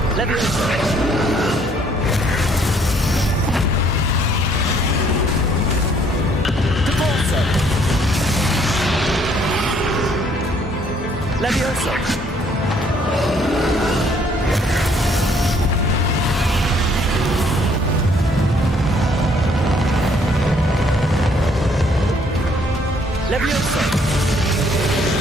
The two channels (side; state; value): both; normal; correlation 0.64